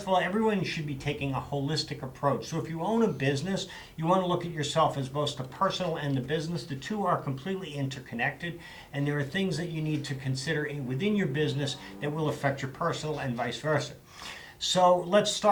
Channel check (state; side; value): identical; both; correlation 1.00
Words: of all, everyone should be taking a holistic approach. So if you own a business, you want to look at yourself as both the personal and the business. The two are completely interconnected, and there are things that you need to consider within your business that will affect your personal and vice versa. So let's